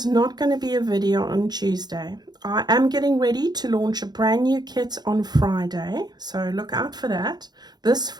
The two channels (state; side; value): late; left; 0.20 ms